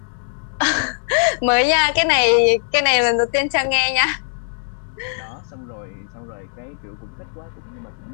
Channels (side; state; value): right; silent; digital silence